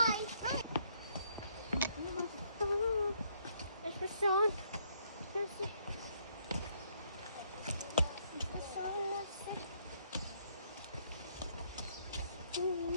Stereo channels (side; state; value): both; inverted; correlation -0.69